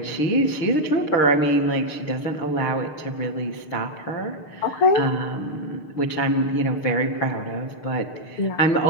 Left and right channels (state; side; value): late; right; 6.6 ms